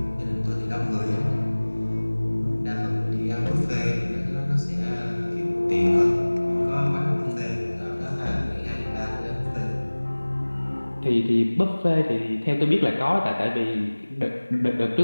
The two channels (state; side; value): inverted; both; correlation -1.00